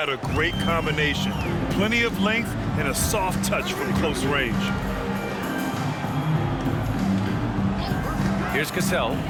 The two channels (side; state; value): both; identical; correlation 1.00